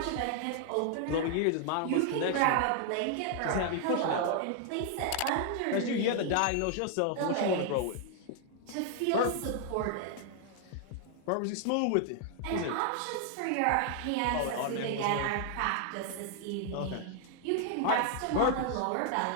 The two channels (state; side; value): different; both; correlation 0.00